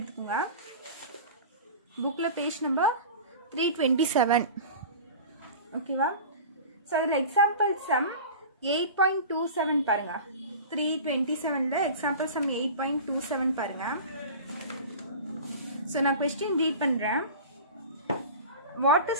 புக்ல பேஜ் நம்பர் 327. ஓகேவா? சோ இதுல எக்ஸாம்பிள் சம் 8.27 பாருங்க. 327 ல எக்ஸாம்பிள் சம் 8.27 பாருங்க. சோ நான் क्वेश्चन ரீட் பண்றேன். What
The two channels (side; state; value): both; inverted; correlation -0.35